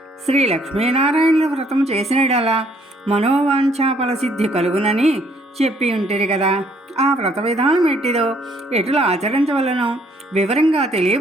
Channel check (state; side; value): normal; both; correlation 0.65